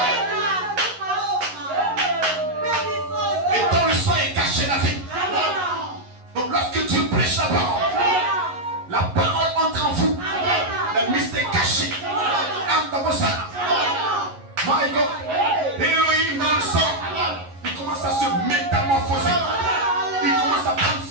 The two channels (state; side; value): late; left; 11 ms